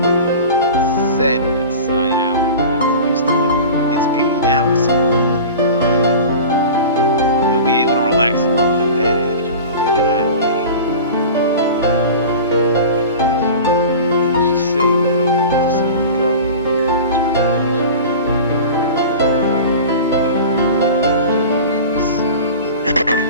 Said inside out, but used to look. Its beauty now is something to be denied. You'll be able to relax a lot better if you look at it that way.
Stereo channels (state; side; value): inverted; both; correlation -0.35